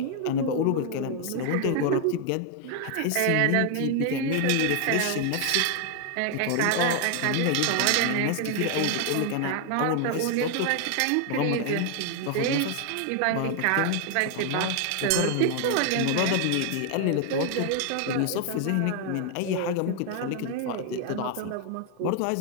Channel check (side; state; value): both; different; correlation 0.00